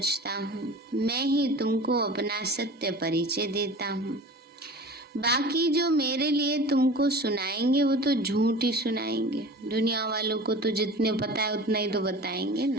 हूँ। मैं ही तुमको अपना सत्य परिचय देता हूँ। बाकी जो मेरे लिए तुमको सुनाएंगे वो तो झूठ ही सुनाएंगे। दुनिया वालों को तो जितने पता है उतना ही तो बताएंगे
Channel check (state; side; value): normal; both; correlation 0.38